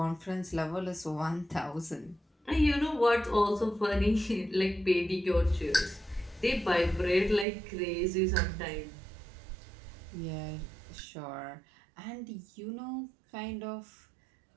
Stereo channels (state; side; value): drops out; left; at 7.5 s